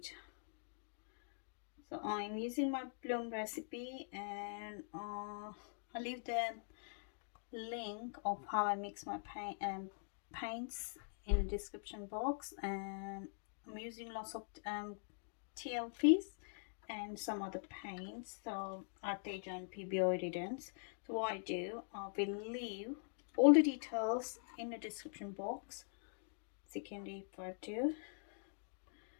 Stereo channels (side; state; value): right; silent; digital silence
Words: So I'm using my bloom recipe, and I'll leave the link of how I mix my paints in the description box. And I'm using lots of TLPs and some other paints, so Arteza and Pebeo Iridescent. So what I do, I will leave all the details in the description box so you can refer to.